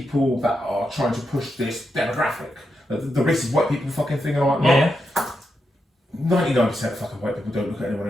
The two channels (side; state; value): both; normal; correlation 0.85